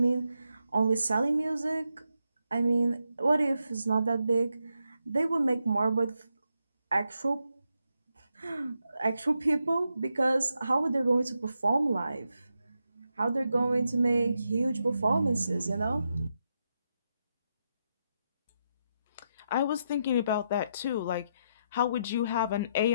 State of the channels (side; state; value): both; inverted; correlation -0.83